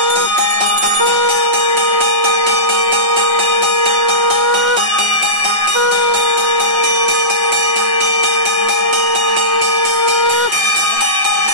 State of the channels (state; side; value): late; left; 6.0 ms